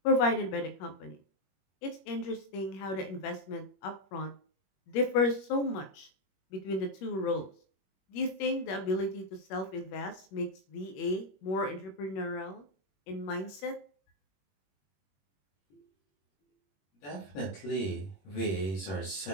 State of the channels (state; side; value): late; right; 21 ms